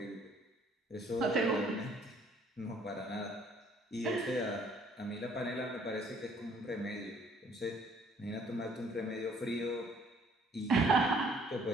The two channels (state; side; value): normal; both; correlation 0.61